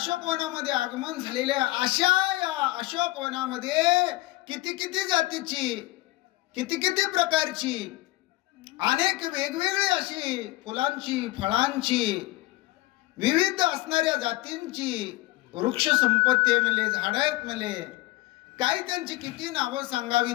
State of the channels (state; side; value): quieter; right; 19.2 dB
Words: आगमन झालेले अशा या अशोकवनामध्ये किती किती जातीची, किती किती प्रकारची, अनेक वेगवेगळी अशी फुलांची, फळांची, विविध असणाऱ्या जातींची वृक्ष संपत्ती आहे म्हणले, झाडं आहेत म्हणले. काही त्यांची किती नावं सांगावी